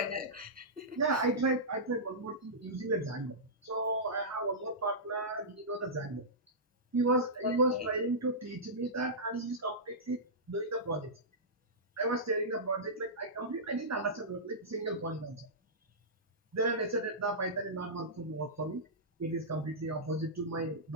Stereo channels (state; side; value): normal; both; correlation -0.15